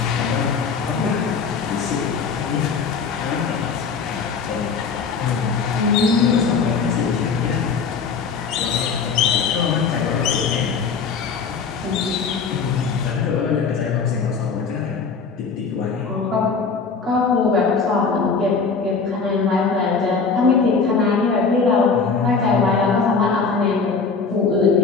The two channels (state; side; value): quieter; right; 5.2 dB